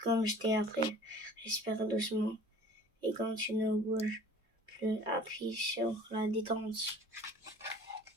comme je t'ai appris, respire doucement. Et quand tu ne bouges plus, appuie sur la détente.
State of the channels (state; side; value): normal; both; correlation 0.46